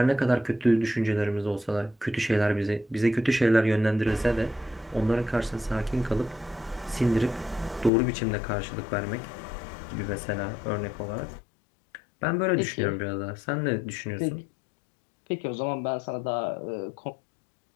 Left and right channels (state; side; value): drops out; right; at 7.9 s